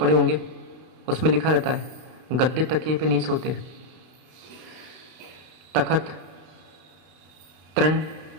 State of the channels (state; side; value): late; left; 32 ms